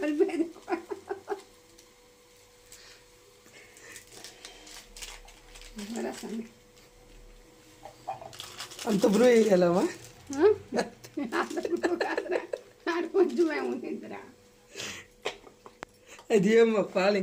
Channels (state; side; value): identical; both; correlation 1.00